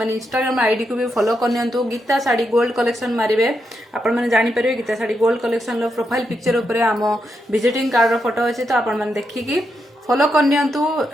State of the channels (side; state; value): both; normal; correlation 0.83